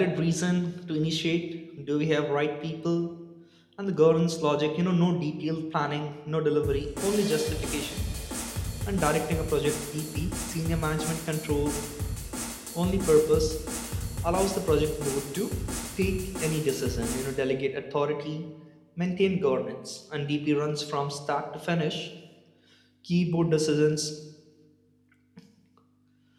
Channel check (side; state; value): both; identical; correlation 1.00